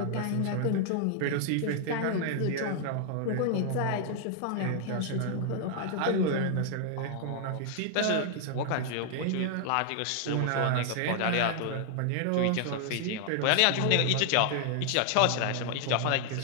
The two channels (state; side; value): different; both; correlation 0.00